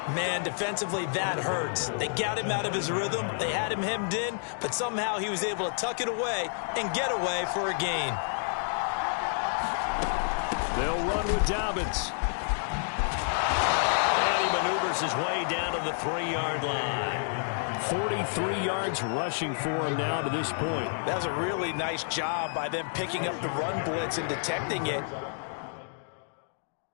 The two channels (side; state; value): right; silent; digital silence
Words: Man, defensively, that hurts. They got him out of his rhythm. They had him hemmed in, but somehow he was able to tuck it away and get away for a gain. They'll run with Dobbins. And he maneuvers his way down to the 3-yard line. 43 yards rushing for him now to this point. That was a really nice job by them picking up the run blitz and detecting it.